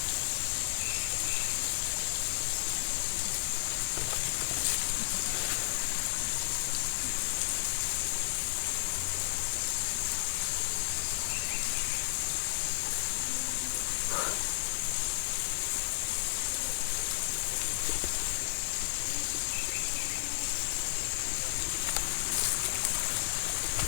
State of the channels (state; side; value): silent; right; 56 dB below the other